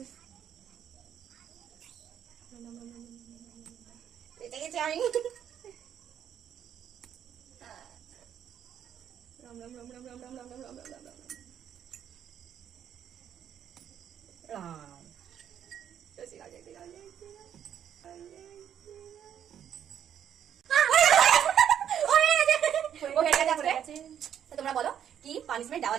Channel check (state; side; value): quieter; left; 9.4 dB